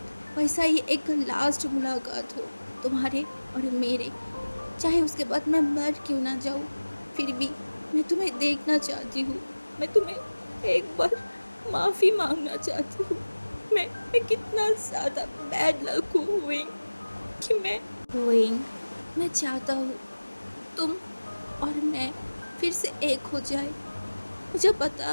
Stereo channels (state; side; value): inverted; both; correlation -1.00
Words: वैसा ही एक लास्ट मुलाकात हो तुम्हारे और मेरे। चाहे उसके बाद मैं मर क्यों ना जाऊँ, फिर भी मैं तुम्हें देखना चाहती हूँ। मैं तुम्हें एक बार माफ़ी मांगना चाहती हूँ। मैं कितना ज़्यादा बैड लक हूँ विंग, कि मैं चाहता हूँ तुम और मैं फिर से एक हो जाए। मुझे पता